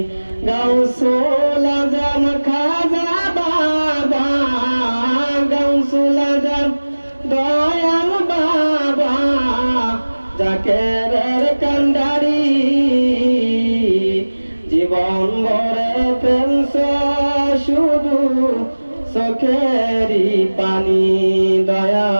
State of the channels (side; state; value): both; inverted; correlation -1.00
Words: গৌসুল আজম খাজা বাবা, গৌসুল আজম দয়াল বাবা, জাকেরের কান্ডারি, জীবন ভরে ফেলছ শুধু চোখেরই পানি